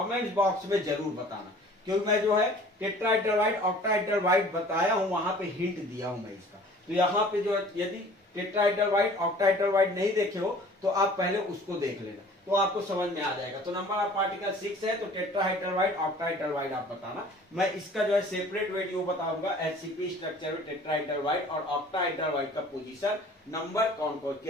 बॉक्स में जरूर बताना, क्योंकि मैं जो है टेट्राहेड्रल व्हाइट ऑक्टाहेड्रल व्हाइट बताया हूं, वहां पे हिंट दिया हूं मैं इसका। तो यहाँ पे जो है यदि टेट्राहेड्रल व्हाइट ऑक्टाहेड्रल व्हाइट नहीं देखे हो तो आप पहले उसको देख लेना, तो आपको समझ में आ जाएगा। तो नंबर ऑफ पार्टिकल 6 है, तो टेट्राहेड्रल व्हाइट ऑक्टाहेड्रल व्हाइट आप बताना। मैं इसका जो है सेपरेट वीडियो बताऊंगा, HCP स्ट्रक्चर में टेट्राहेड्रल व्हाइट और ऑक्टाहेड्रल व्हाइट का पोजीशन नंबर कौन कौन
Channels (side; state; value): both; normal; correlation 0.49